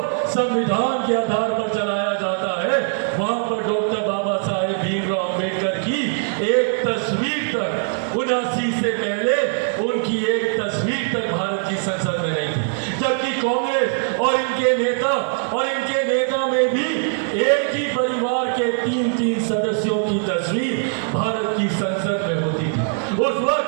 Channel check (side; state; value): left; silent; digital silence